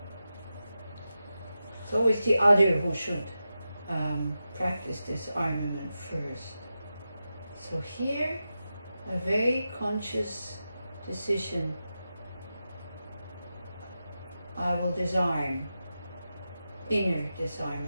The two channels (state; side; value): inverted; both; correlation -0.91